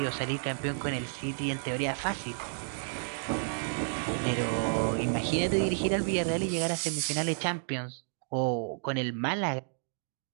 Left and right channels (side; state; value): left; silent; digital silence